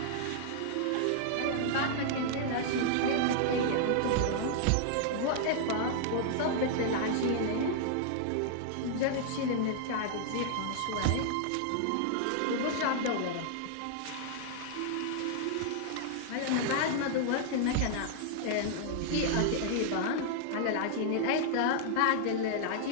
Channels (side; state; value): both; different; correlation -0.01